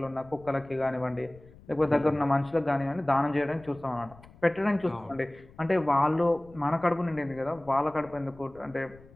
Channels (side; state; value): left; noise; rumble, 23 dB below the sound